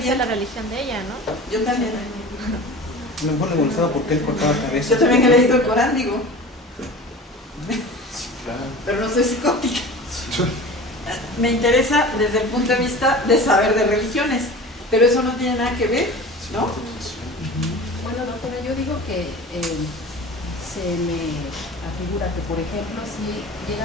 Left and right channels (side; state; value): both; normal; correlation 0.37